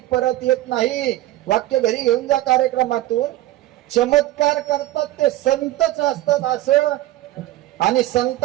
परत येत नाही. वाक्य घरी घेऊन जा कार्यक्रमातून. चमत्कार करतात ते संतच असतात असं, आणि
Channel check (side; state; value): left; quieter; 15.7 dB